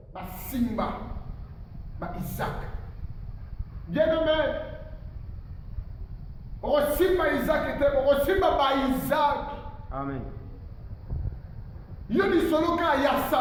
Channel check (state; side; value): identical; both; correlation 1.00